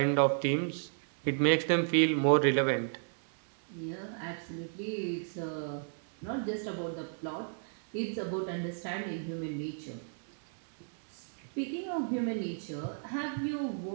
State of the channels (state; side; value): silent; left; 56 dB below the other